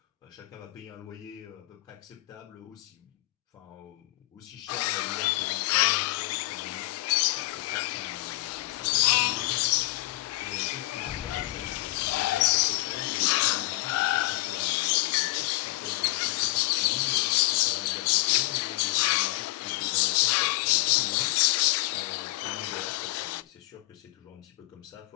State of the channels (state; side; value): quieter; right; 19.4 dB